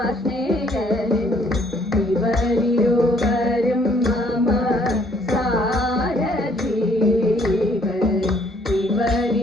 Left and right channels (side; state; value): both; normal; correlation 0.64